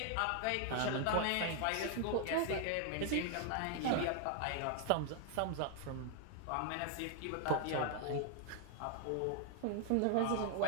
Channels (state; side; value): different; both; correlation 0.00